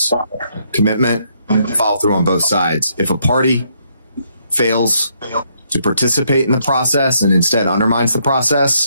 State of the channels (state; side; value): inverted; both; correlation -0.73